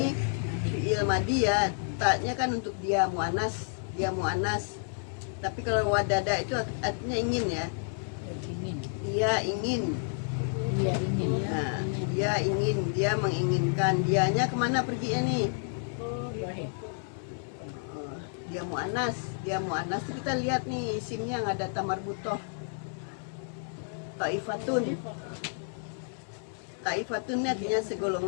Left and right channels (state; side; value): silent; right; digital silence